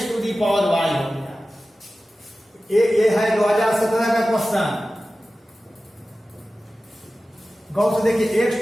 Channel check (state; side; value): normal; both; correlation 0.95